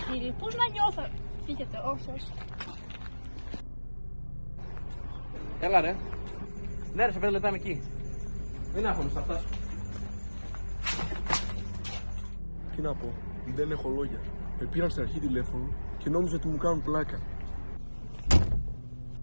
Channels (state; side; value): inverted; both; correlation -1.00